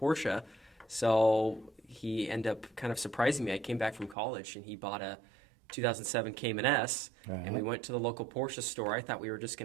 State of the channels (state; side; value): drops out; left; at 4.2 s